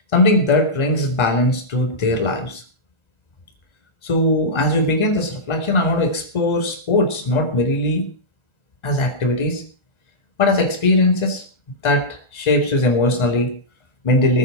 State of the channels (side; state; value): right; late; 1.4 ms